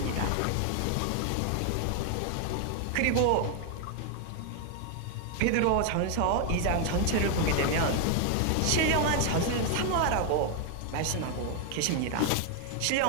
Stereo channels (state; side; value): different; both; correlation 0.00